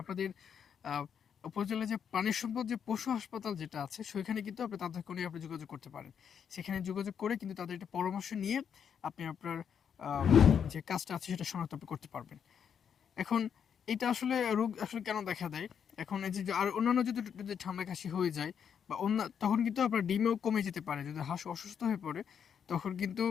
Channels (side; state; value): right; quieter; 7.7 dB